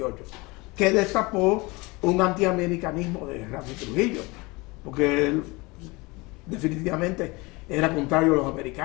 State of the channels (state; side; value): quieter; right; 24.8 dB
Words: que destapó un antiamericanismo de Ramfi Trujillo, porque él definitivamente era contrario a los